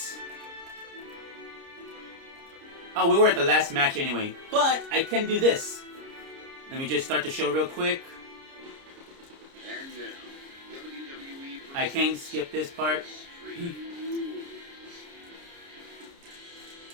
Oh, we were at the last match anyway. But I can do this. Let me just start the show real quick. And now, WWE I can't skip this part.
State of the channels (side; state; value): left; late; 30 ms